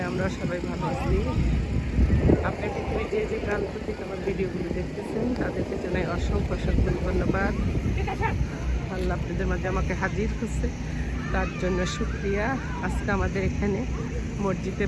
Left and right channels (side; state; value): both; identical; correlation 1.00